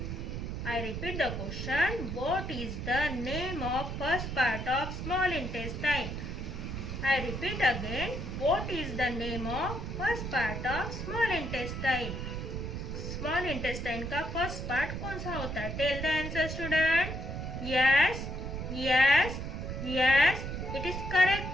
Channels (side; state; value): right; noise; rumble, 5 dB below the sound